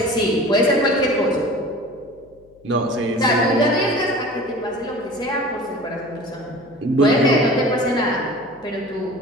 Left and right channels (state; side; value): noise; left; hum, 30 dB below the sound